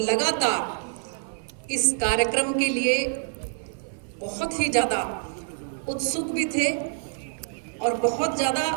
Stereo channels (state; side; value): silent; left; 61 dB below the other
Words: लगातार इस कार्यक्रम के लिए बहुत ही ज़्यादा उत्सुक भी थे और बहुत ज़्यादा